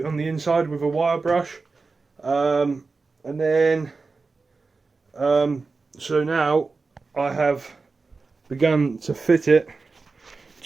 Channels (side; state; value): left; quieter; 4.1 dB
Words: the inside with a wire brush, and then so now I have begun to fit it